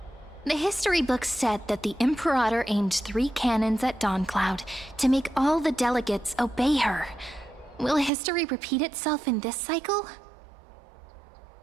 The history books said that the Imperator aimed 3 cannons at Dawncloud to make all the delegates obey her. Will history repeat itself in this cycle?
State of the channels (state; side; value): drops out; left; at 8.1 s